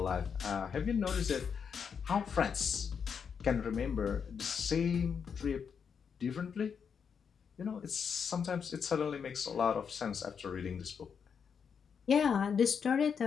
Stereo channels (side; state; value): right; quieter; 6.7 dB